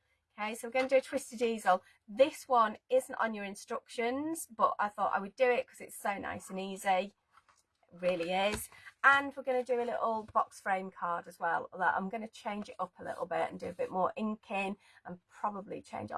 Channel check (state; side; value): identical; both; correlation 1.00